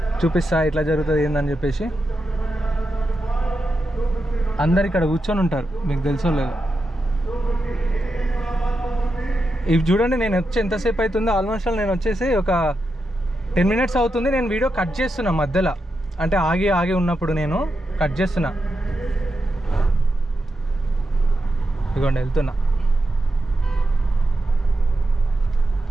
చూపిస్తా ఎట్లా జరుగుతుంది ఏందని చెప్పేసి. అందరు ఇక్కడ కూర్చొని ఉంటారు, మీకు తెలుసో లేదు. ఇవి చూడండి, నేను వచ్చి ఎంతసేపు అవుతుందో, ఆల్మోస్ట్ నేను వచ్చేసి ఒక 10 minutes అవుతుంది. నేను వీడియో కట్ చేస్తున్నా మధ్యలో, అంటే ఆగి ఉన్నప్పుడు నేను కట్ చేస్తున్నా. ఇదిగోండి వెళ్తున్నా.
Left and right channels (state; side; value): normal; both; correlation 0.87